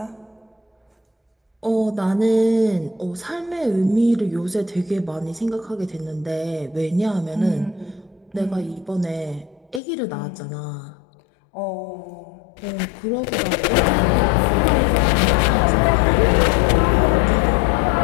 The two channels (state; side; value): drops out; right; at 9.8 s